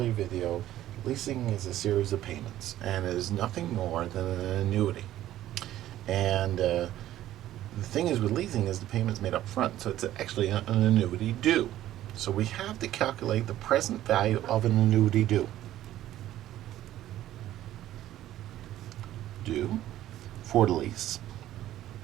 video, leasing is a series of payments, and it is nothing more than an annuity. And the thing is with leasing is the payment's made up front, so it's actually an annuity due. So we have to calculate the present value of an annuity due. For the lease.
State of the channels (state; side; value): quieter; left; 13.4 dB